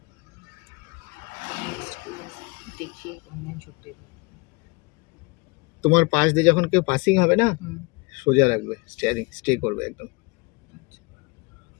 তোমার পাশ দিয়ে যখন কেউ পাসিং হবে না, সোজা রাখবে স্টিয়ারিং, স্টে করবে একদম।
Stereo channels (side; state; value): right; quieter; 27.8 dB